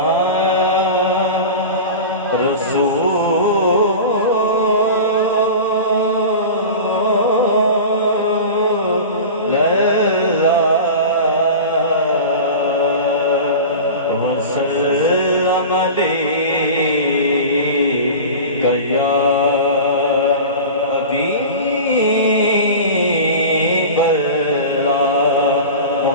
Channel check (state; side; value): inverted; both; correlation -0.32